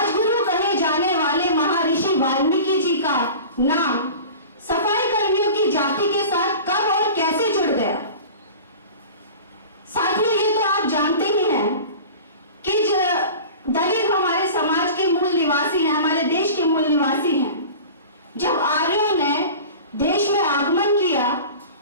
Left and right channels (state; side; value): inverted; both; correlation -0.37